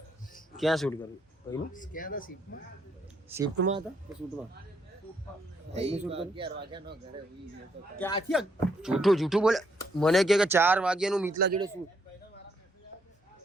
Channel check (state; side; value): normal; both; correlation 0.73